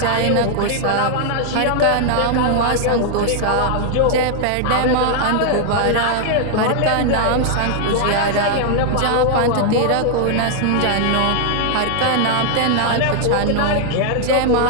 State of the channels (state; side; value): different; both; correlation 0.00